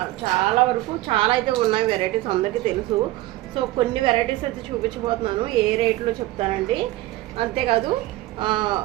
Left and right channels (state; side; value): quieter; left; 17.5 dB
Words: చాలా అయితే ఉన్నాయి వెరైటీస్, అందరికీ తెలుసు. సో కొన్ని వెరైటీస్ అయితే చూపించబోతున్నాను, ఏ రేట్లో చెప్తానండి. అంతేకాదు